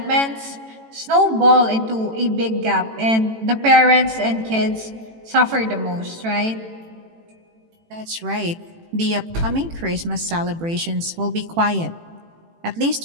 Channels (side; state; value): left; late; 18 ms